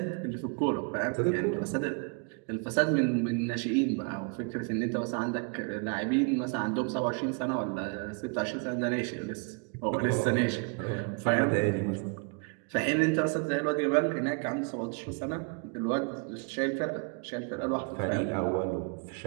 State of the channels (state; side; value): quieter; left; 36.9 dB